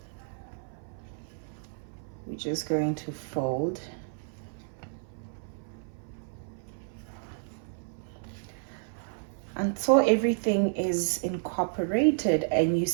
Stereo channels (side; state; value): left; silent; 56 dB below the other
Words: We're just going to fold. Until everything is incorporated and you